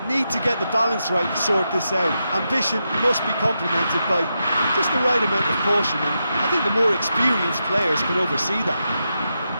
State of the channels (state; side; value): inverted; both; correlation -0.86